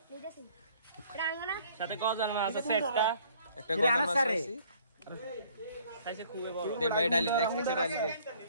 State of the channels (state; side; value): inverted; both; correlation -0.59